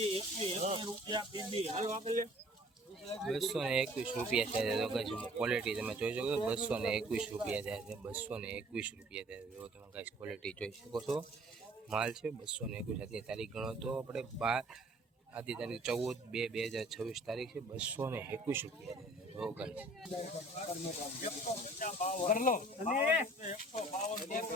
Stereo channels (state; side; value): normal; both; correlation 0.52